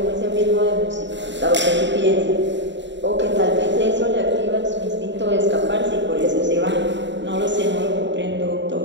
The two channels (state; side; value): late; left; 0.53 ms